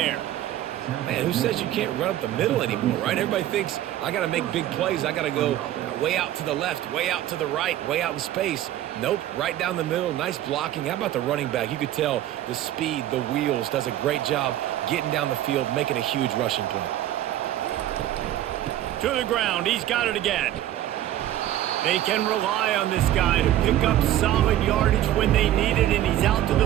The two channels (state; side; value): quieter; left; 12.9 dB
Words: Man, who says you can't run up the middle anymore, right? Everybody thinks I got to make big plays. I got to go way out to the left, way out to the right, way out in space. Nope, right down the middle. Nice blocking. How about the running back? You could tell the speed, the wheels, does a great job getting down the field, making a huge rushing play. To the ground. He's got it again. They can rely on this guy to pick up solid yardage when they need it, and he's out to